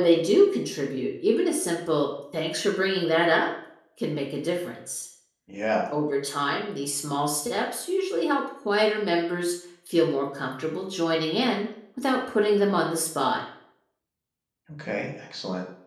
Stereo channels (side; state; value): both; identical; correlation 1.00